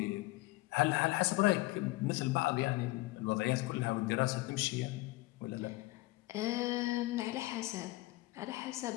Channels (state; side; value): quieter; right; 20.3 dB